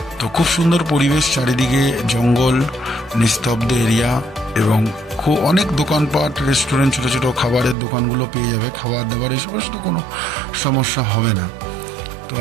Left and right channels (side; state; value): left; drops out; at 7.8 s